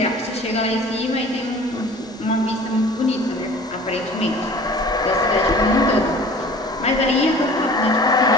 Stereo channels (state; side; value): normal; both; correlation 0.45